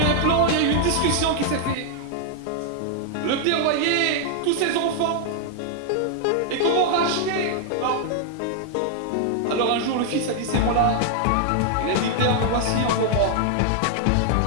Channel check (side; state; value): both; different; correlation 0.00